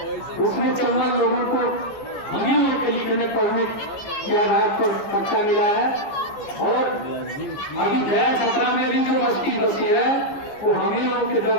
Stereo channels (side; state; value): right; late; 14 ms